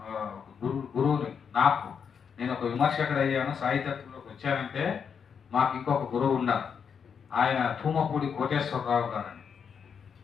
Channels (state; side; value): quieter; right; 6.8 dB